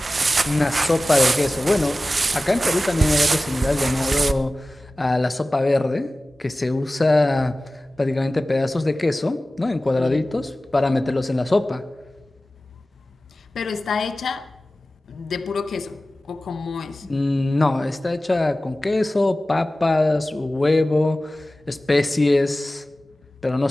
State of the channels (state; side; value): normal; both; correlation 0.96